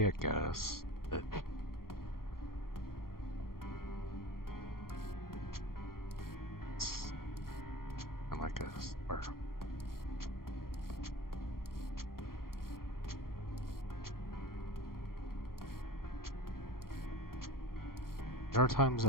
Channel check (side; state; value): right; late; 0.92 ms